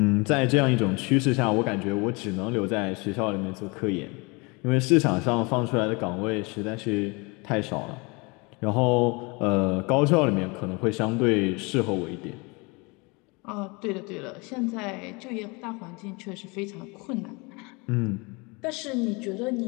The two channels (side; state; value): right; quieter; 28.0 dB